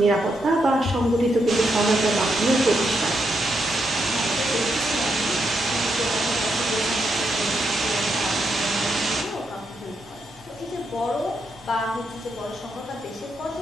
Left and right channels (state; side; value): normal; both; correlation 0.81